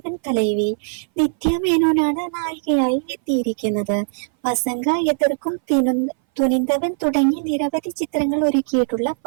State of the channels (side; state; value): left; silent; 61 dB below the other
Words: തലൈവി. നിത്യ മേനോനാണ് നായികയായി എത്തിയിരിക്കുന്നത്. വസങ്ക എതിർക്കും തുനിന്തവൻ തുടങ്ങി നിരവധി ചിത്രങ്ങൾ ഒരുക്കിയിട്ടുള്ള